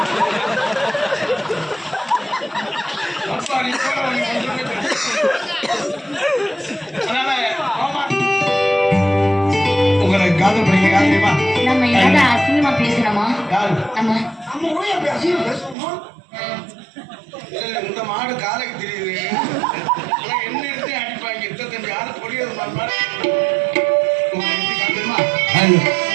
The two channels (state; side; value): drops out; left; at 15.8 s